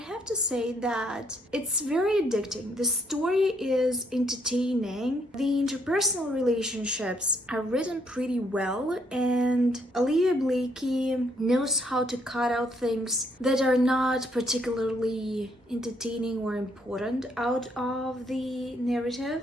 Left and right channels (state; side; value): normal; both; correlation 0.71